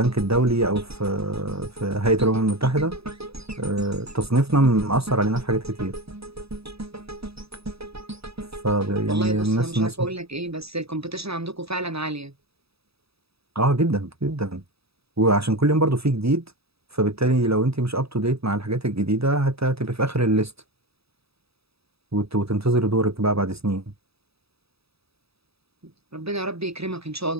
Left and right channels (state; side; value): late; left; 0.77 ms